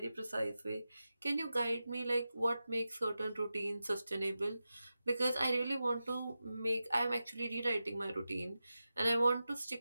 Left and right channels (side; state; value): both; inverted; correlation -0.92